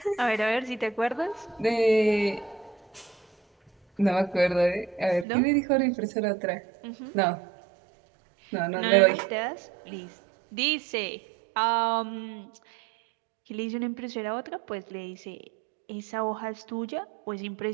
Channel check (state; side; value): drops out; left; at 5.2 s